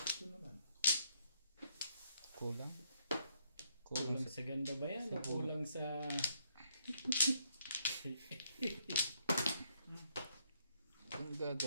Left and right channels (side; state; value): both; inverted; correlation -0.72